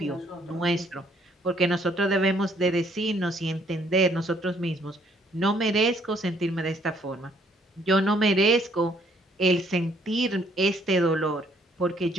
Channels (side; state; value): both; normal; correlation 0.65